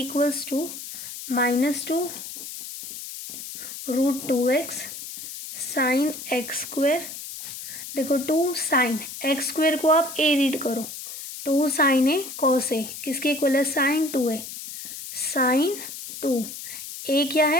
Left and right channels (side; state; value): left; noise; hiss, 10 dB below the sound